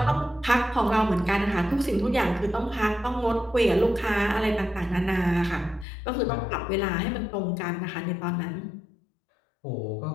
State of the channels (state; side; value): drops out; right; at 5.9 s